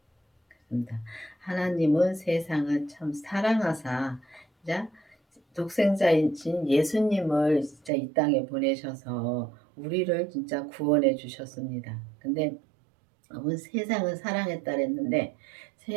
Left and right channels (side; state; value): left; drops out; at 7.9 s